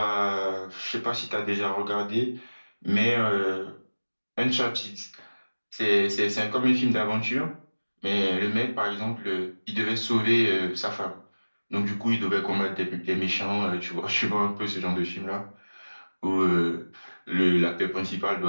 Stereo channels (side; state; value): both; inverted; correlation -1.00